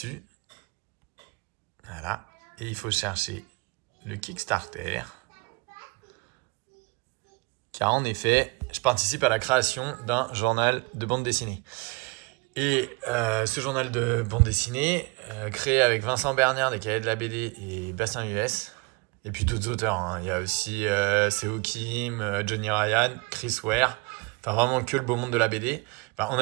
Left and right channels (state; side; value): quieter; left; 28.0 dB